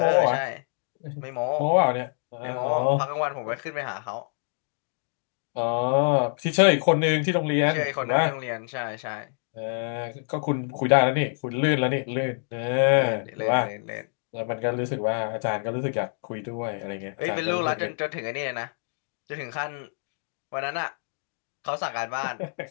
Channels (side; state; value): right; silent; 60 dB below the other